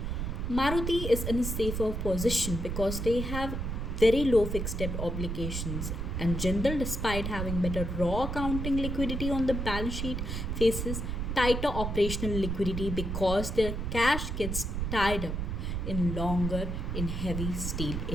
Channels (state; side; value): noise; right; rumble, 3 dB below the sound